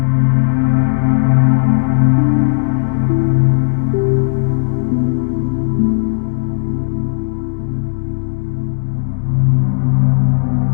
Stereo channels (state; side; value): silent; right; digital silence